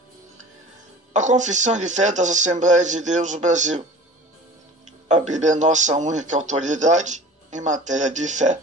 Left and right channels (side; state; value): both; normal; correlation 0.42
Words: A Confissão de Fé das Assembleias de Deus do Brasil. A Bíblia é nossa única autoridade em matéria de fé,